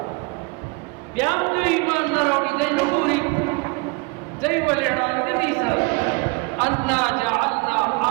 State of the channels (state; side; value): quieter; left; 28.0 dB